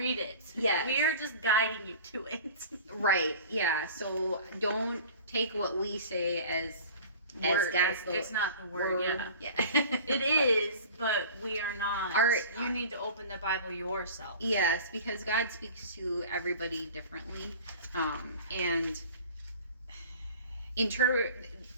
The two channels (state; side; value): inverted; both; correlation -0.41